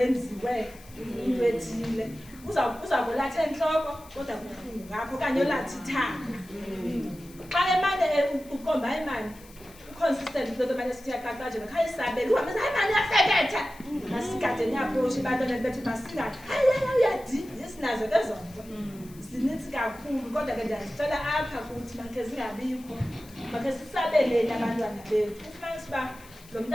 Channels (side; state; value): left; noise; hiss, 23 dB below the sound